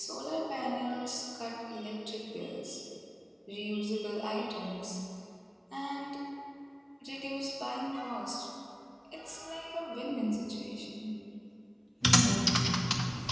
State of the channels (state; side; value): identical; both; correlation 1.00